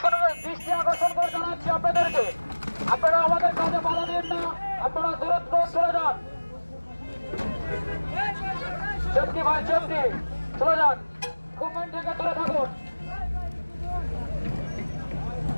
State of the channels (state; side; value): inverted; both; correlation -1.00